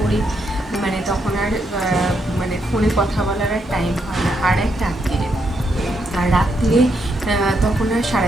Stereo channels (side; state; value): both; normal; correlation 0.78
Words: মানে তখন আর মানে ফোনে কথা বলার আর টাইম হয় না। আর এক রাত্রিরে, আর রাত্রিরে তখন আর